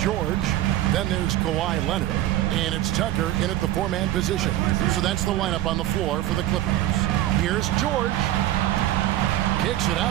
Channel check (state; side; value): quieter; left; 14.1 dB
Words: Then there's Kawhi Leonard. And it's Tucker in at the 4-man position. So that's the lineup on the floor for the Clippers. Here's George. Kicks it